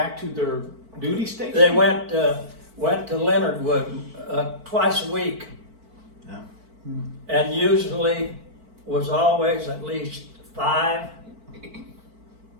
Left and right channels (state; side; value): late; left; 4.5 ms